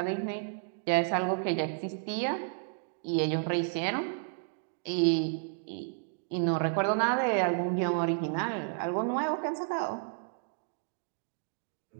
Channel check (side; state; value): left; silent; digital silence